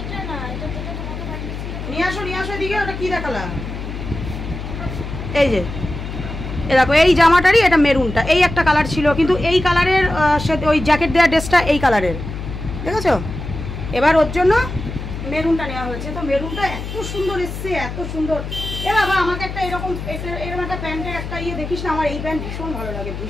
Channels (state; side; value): noise; left; hum, 7 dB below the sound